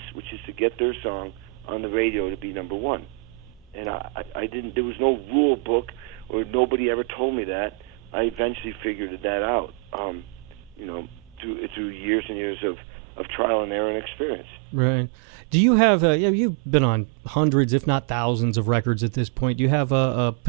which is to get their song on the radio to be number one. And I didn't. There was no rule book, or nobody ever told me that. I eventually figured that out. Through years and years of trial and error and experience. Right. Do you have? You've been on hundreds, if not thousands, of records at this point. Do you have a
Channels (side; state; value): left; drops out; at 12.2 s